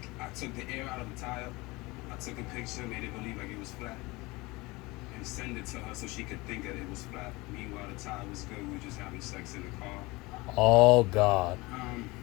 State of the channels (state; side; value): quieter; right; 22.9 dB